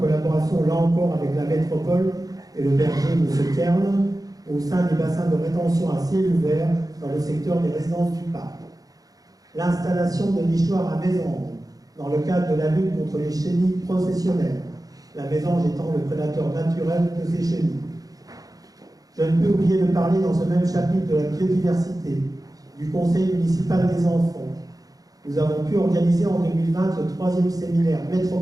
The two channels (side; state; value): left; late; 0.18 ms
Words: collaboration là encore avec la métropole et le berger M. Kern au sein des bassins de rétention à ciel ouvert dans le secteur des résidences du parc. L'installation de nichoirs à mésanges dans le cadre de la lutte contre les chenilles professionnelles, la mésange étant le prédateur naturel de ces chenilles. Je ne peux oublier de parler dans ce même chapitre de la biodiversité, du Conseil municipal des enfants. Nous avons pu organiser en 2020 le 3e séminaire